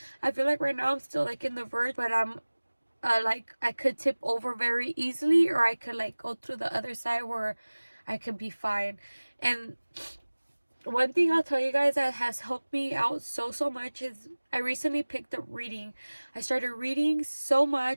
I feel like right now I'm still like in the verge, but I'm like I could tip over very easily, or I could like go through the other side where I could be fine. And one thing I'll tell you guys that has helped me out so much is I recently picked up reading. I started reading so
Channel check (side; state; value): both; inverted; correlation -1.00